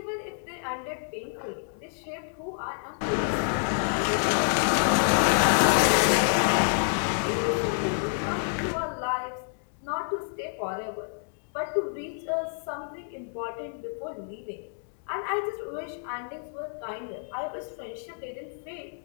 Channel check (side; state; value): right; silent; digital silence